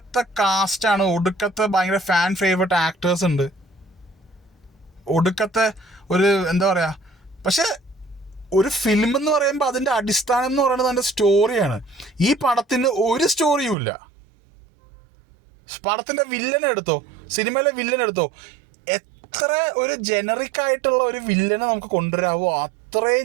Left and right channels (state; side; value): drops out; left; at 13.8 s